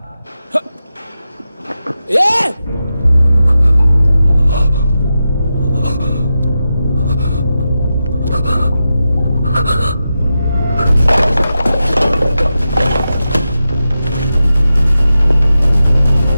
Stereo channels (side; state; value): both; inverted; correlation -0.90